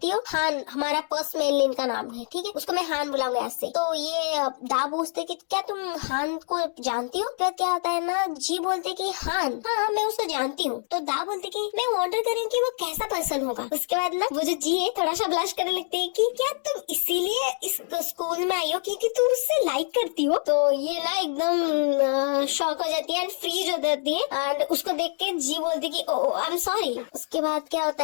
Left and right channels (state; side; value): silent; right; 61 dB below the other